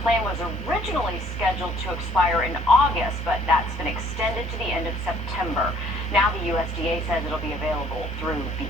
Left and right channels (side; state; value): both; normal; correlation 0.59